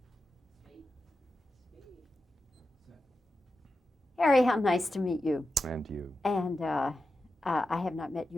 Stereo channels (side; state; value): both; normal; correlation 0.91